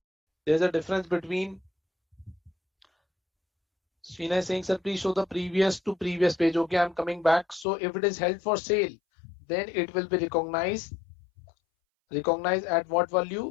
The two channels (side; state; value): right; drops out; at 7.7 s